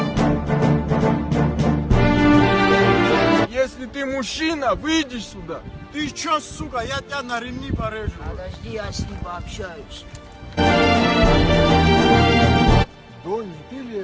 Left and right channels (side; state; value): both; identical; correlation 1.00